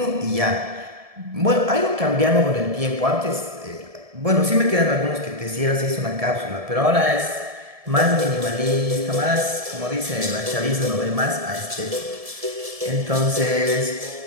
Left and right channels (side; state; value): left; late; 1.7 ms